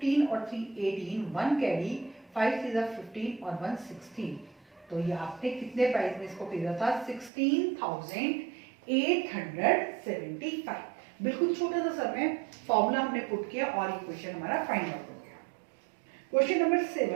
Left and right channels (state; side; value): drops out; left; at 7.3 s